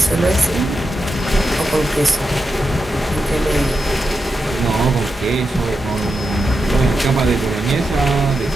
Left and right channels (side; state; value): both; normal; correlation 0.88